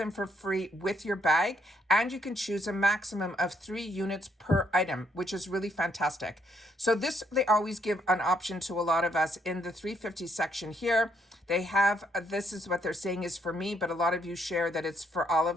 for free with your bag. And you can choose a maximum of 3 units per item, which is really fantastic. So this, they always give an option to a lot of us in the 350 section here. They have, this is what they're saying is for me, but a lot of you share that it's for all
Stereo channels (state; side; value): normal; both; correlation 0.72